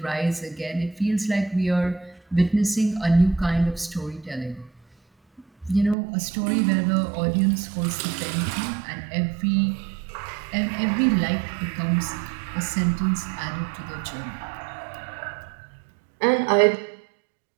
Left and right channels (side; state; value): left; drops out; at 6.0 s